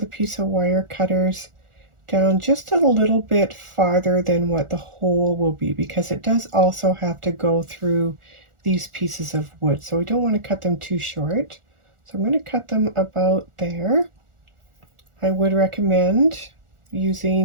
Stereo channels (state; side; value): late; left; 1.4 ms